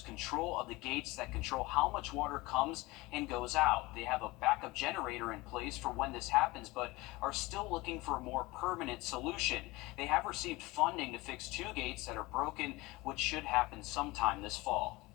control of the gates that control how much water comes and goes out. They have a backup generator in place for when this happens, but are still looking for a more permanent solution. They have received funding to fix 2 gates that are broken, which should happen sometime this fall.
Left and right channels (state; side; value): quieter; right; 21.7 dB